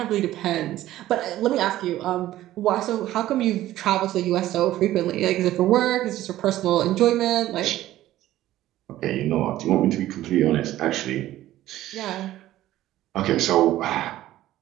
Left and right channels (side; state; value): left; quieter; 14.4 dB